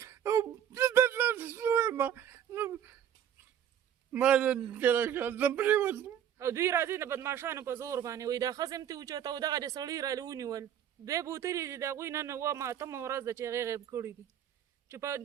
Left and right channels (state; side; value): quieter; left; 9.6 dB